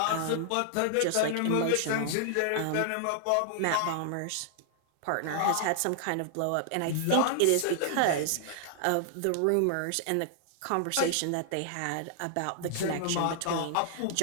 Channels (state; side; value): different; both; correlation 0.00